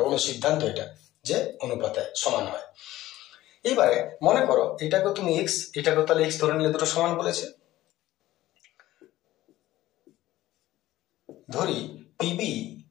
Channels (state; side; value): quieter; right; 15.6 dB